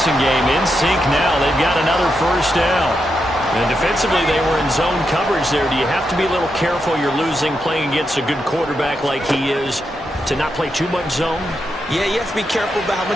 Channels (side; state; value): both; normal; correlation 0.84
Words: game in sync now. They've got another first down. And defensively, they were in zone coverage there. Do you have to be a little careful? You're losing playing against a good quarterback like he is to not play too much zone? Yeah, you have to be careful about how